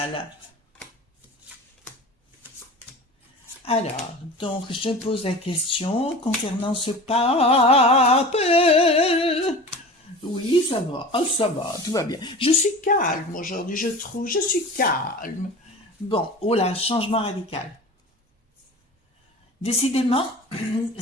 Alors, donc, je pose la question concernant ce pape. Oui, ça va, tout va bien. Je suis calme aujourd'hui, je trouve, je suis calme. Bon, oh là, changement radical. Décidément,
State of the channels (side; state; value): both; normal; correlation 0.35